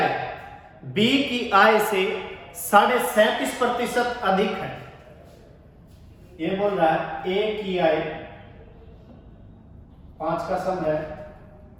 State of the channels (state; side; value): identical; both; correlation 1.00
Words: बी की आय से 37.5% अधिक है, ये बोल रहा है ए की आय, 5 का सम है,